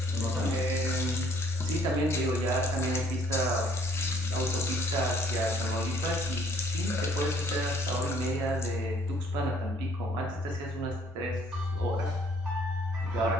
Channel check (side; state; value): both; normal; correlation 0.61